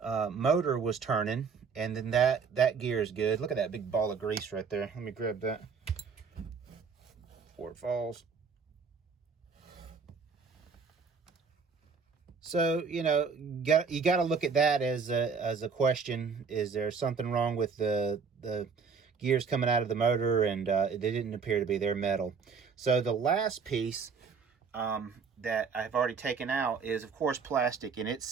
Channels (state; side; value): quieter; left; 5.5 dB